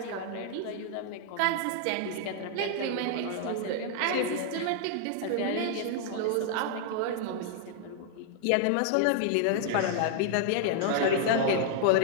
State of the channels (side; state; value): both; different; correlation -0.01